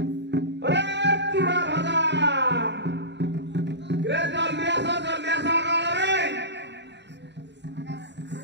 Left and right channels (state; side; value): late; left; 0.51 ms